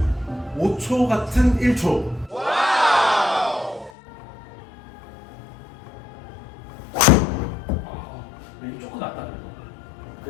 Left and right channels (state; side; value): drops out; right; at 3.9 s